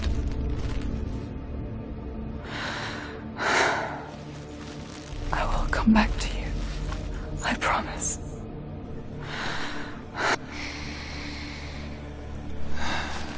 I will come back to you. I promise.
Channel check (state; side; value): identical; both; correlation 1.00